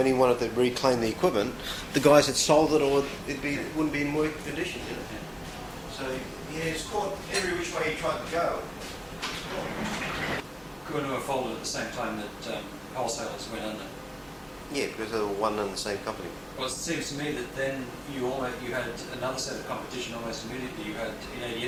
he wanted to reclaim the equipment, the guys had sold it, or it wouldn't be in working condition, you know. So yeah, it's caught every which way he tried to go. Kokopo folded at the same time that wholesalers went under. Yeah, because they were one and the same company. Well, it seems to me that then you had another set of competition almost immediately. You had in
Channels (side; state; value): both; identical; correlation 1.00